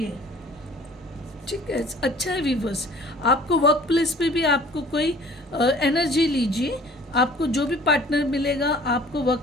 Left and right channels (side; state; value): both; normal; correlation 0.51